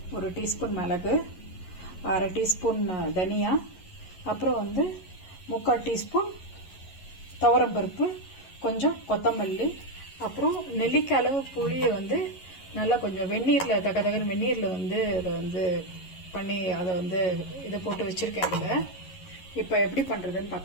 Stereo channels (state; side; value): late; right; 11 ms